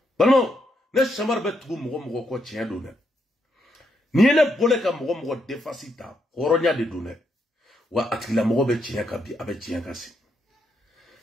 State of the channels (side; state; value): both; normal; correlation 0.78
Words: balmo ne chamar be tugu mogo ko tien do ne ni ne bole ka mogo defasita horonya de do ne wa atila mogo be tienka bi abe tienka si